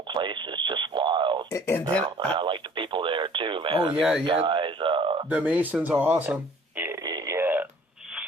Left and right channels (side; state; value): both; normal; correlation 0.52